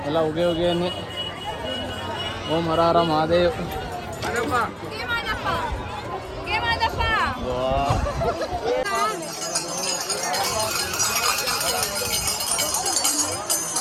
ಎಲ್ಲ ಉಗೆ ಉಗೆ ಅನ್ನಿ. ಓಂ ಹರ ಹರ ಮಹಾದೇವ್.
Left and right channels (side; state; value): both; identical; correlation 1.00